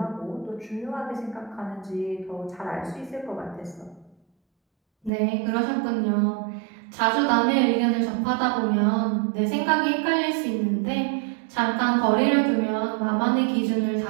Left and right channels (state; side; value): drops out; left; at 5.1 s